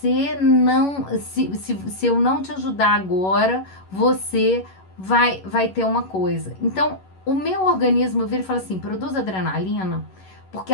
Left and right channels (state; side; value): late; right; 11 ms